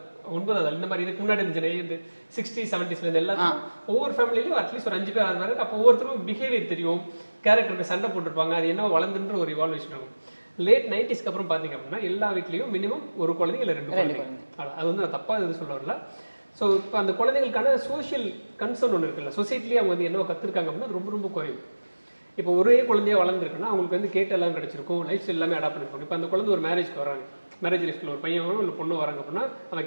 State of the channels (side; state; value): both; inverted; correlation -1.00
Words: 9வது. இந்த மாதிரி இதுக்கு முன்னாடி இந்த 60s 70s எல்லாத்துக்கும் ஒவ்வொரு ஃபேமிலியிலும் அட்லீஸ்ட் ஒரு 5 பேர் 6 பேர். அப்போ ஒவ்வொருத்தரும் பிஹேவியர் தெரியும், கேரக்டருக்கு சண்டை போட்டிருப்பாங்க, அது என்ன வளர்ந்துன்ற ஒரு இவால்வேஷன் இருக்கும். லேட் 90ஸ்க்கு அப்புறம் பார்த்தீங்க அப்படின்னா எல்லா வீட்லேயும் மினிமம் ஒரு குழந்தைங்க இல்லை 2 குழந்தைங்க. அது வந்து நான் தப்பாக இது சொல்ல வரல. ஸோ இப்போ அந்த குழந்தைகளுக்கான சோஷியல் கன்சர்ன் ஒன்று இருக்குல்ல, சொசைட்டிலேயே அவங்க வந்து என்ன கற்றுருக்காங்க அப்படின்னா அது ரொம்ப ரொம்ப குறையும். இப்போ ஒரே குழந்தையா வளர்ந்துருக்குன்னா அவங்களுக்கு வந்து கேட்டு எல்லாம் கிடைச்சிருக்கும், லைஃப் ஸ்டைல் எல்லாமே அடாப்ட் பண்ணிருக்கும். இப்போ அந்த குழந்தை ஒரு மேரேஜ்க்கு வராங்க, மேரேஜ் லைஃப்ல ஒரு பையன் இல்லை பொண்ணு வராங்க அப்படின்னா